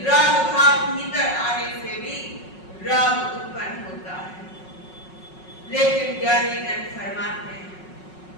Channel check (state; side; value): late; right; 5.4 ms